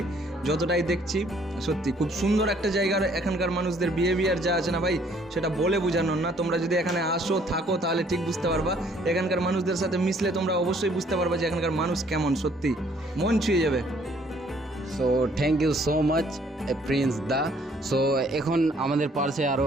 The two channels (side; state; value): both; normal; correlation 0.62